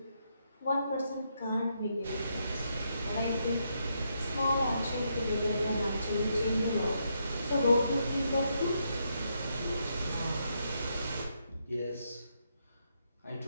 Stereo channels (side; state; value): both; inverted; correlation -0.78